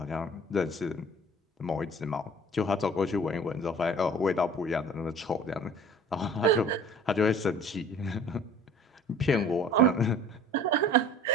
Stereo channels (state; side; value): normal; both; correlation 0.48